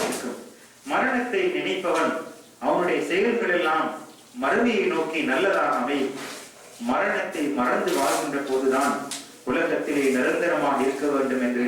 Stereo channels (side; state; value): both; identical; correlation 1.00